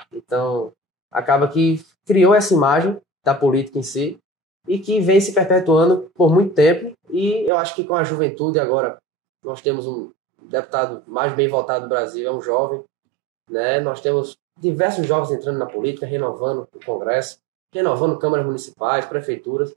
Então, acaba que criou essa imagem da política em si e que vem se perpetuando por muito tempo. E eu acho que com a juventude agora, nós temos um deputado mais bem votado do Brasil, é um jovem. Né? Nós temos diversos jovens entrando na política, renovando o Congresso, renovando câmaras municipais, prefeituras.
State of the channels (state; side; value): drops out; left; at 7.5 s